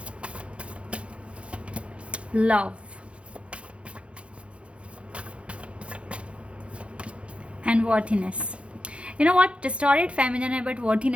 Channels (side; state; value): left; late; 0.060 ms